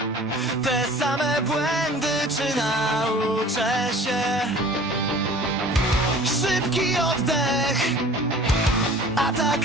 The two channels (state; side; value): normal; both; correlation 0.46